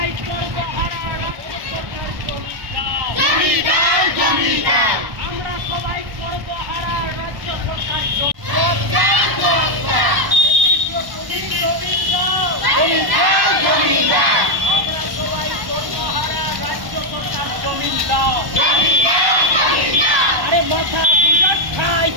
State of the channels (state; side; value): late; left; 1.1 ms